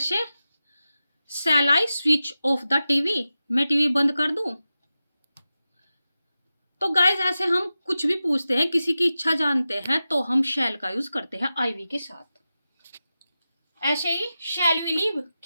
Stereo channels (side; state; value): both; inverted; correlation -0.93